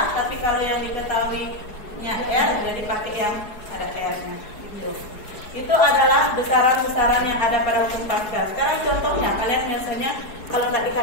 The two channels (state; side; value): late; right; 4.7 ms